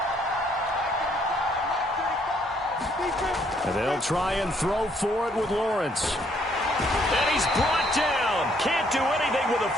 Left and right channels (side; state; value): both; normal; correlation 0.68